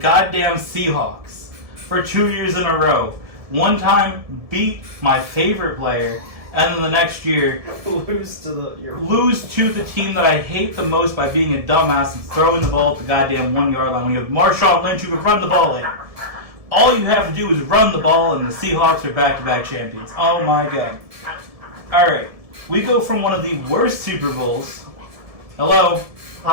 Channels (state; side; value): late; left; 1.7 ms